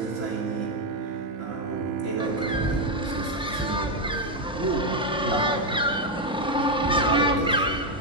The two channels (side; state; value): both; normal; correlation 0.04